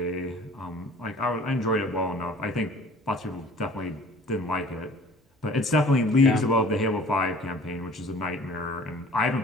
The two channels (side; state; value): both; normal; correlation 0.48